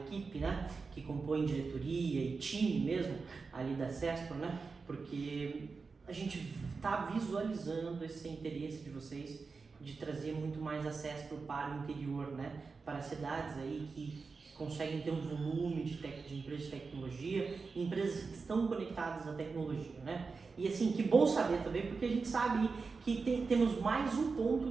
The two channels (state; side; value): quieter; left; 4.6 dB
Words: né, que compõe diretoria e time mesmo ali da CESPRO, né, porque a gente está visualizando esse interesse de vocês de trazer muito mais a CESPRO para o interior, né, para cidades aí que conseguem ter um volume de empresas de tecnologia, empresas que estão conectadas à tecnologia, né? E assim, que bom saber também, porque a gente sabe que temos mais um